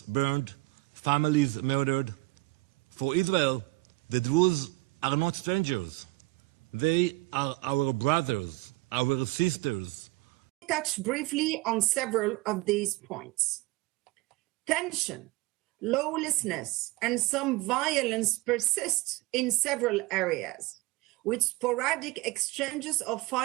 burned, families murdered. For Israel, the Druze are not strangers. They are our brothers, our sisters. Touch briefly on several of these points. Tension, lawlessness, and some violence persist in several areas, with sporadic exchanges of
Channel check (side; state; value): left; quieter; 21.6 dB